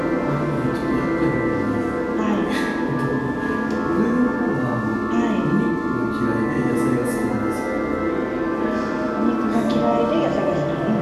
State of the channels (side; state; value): both; identical; correlation 1.00